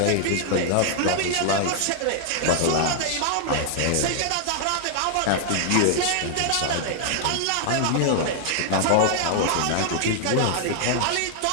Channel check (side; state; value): both; different; correlation 0.00